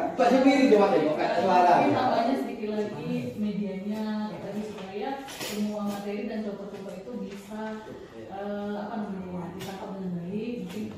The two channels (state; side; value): identical; both; correlation 1.00